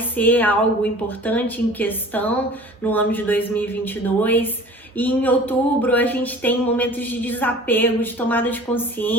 ser algo importante em questão no ano de 2022. E em outubro a gente tem momentos de desapego, de tomada de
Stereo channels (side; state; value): both; normal; correlation 0.44